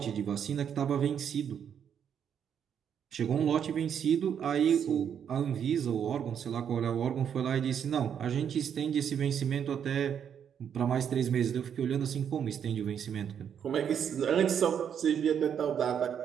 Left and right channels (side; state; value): left; quieter; 8.3 dB